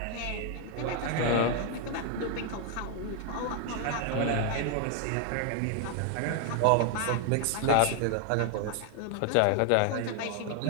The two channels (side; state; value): both; different; correlation 0.00